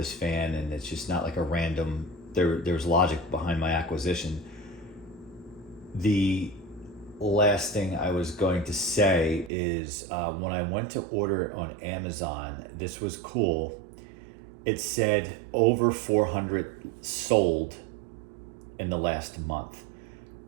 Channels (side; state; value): left; drops out; at 9.5 s